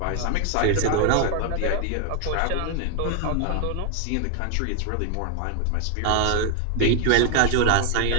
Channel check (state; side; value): different; both; correlation 0.00